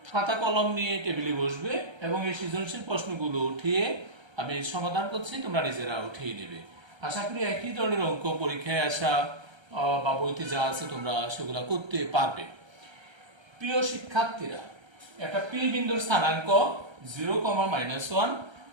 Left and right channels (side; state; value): left; late; 1.3 ms